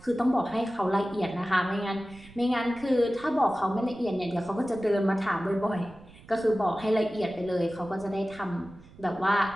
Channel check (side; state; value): right; noise; rumble, 21 dB below the sound